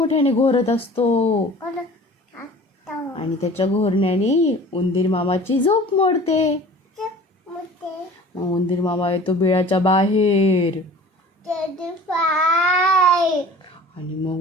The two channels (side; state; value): both; normal; correlation 0.44